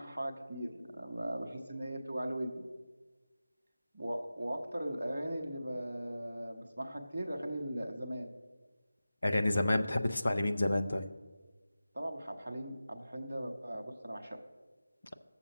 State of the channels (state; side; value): inverted; both; correlation -0.94